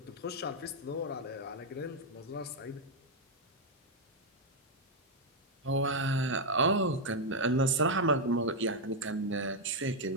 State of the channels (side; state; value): both; normal; correlation 0.00